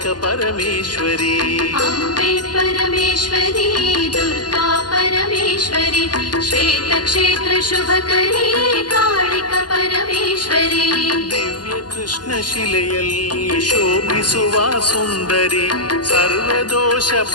परमेश्वरी अम्बे परमेश्वरी दुर्गा परमेश्वरी श्वेत क्षेत्र शुभकरी कालिक परमेश्वरी दिव्य कृष्ण शिಲೆಯಲ್ಲಿ ಶೋಭಿಸುವ ಸುಂದರಿ ಸರ್ವದೋಷ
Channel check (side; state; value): right; late; 0.70 ms